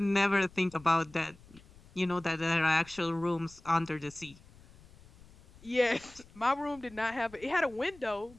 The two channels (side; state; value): left; noise; rumble, 24 dB below the sound